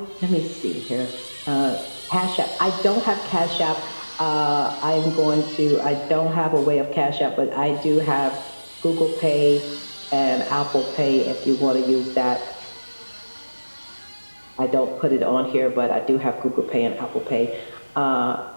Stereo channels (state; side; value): inverted; both; correlation -1.00